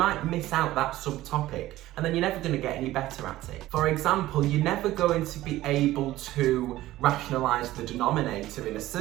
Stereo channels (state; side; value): quieter; left; 15.8 dB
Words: miss out that subtopic, and then you're never going to get any better at it. For example, you're never going to be able to rationalise the denominator in a